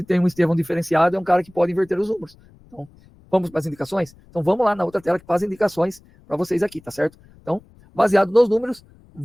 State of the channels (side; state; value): left; noise; rumble, 27 dB below the sound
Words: tem um Estevão diferenciado, é um cara que pode inverter os números. Então, vamos para as indicações? Então, vamos lá na outra tela que faz indicações para vocês aqui, tá certo? Então, baseado nos números,